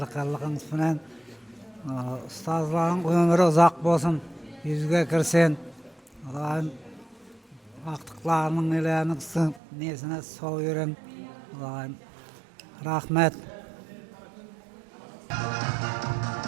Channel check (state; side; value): drops out; left; at 9.6 s